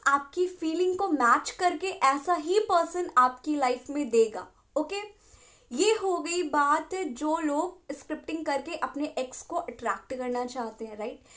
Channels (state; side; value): identical; both; correlation 1.00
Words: आपकी फीलिंग को मैच करके ऐसा ही पर्सन आपकी लाइफ में देगा। ओके, ये हो गई बात जो लोग स्क्रिप्टिंग करके अपने एक्स को अट्रैक्ट करना चाहते हैं, राइट।